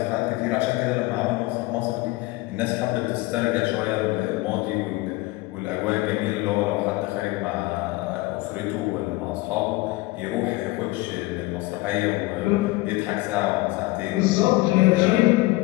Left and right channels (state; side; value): quieter; right; 20.6 dB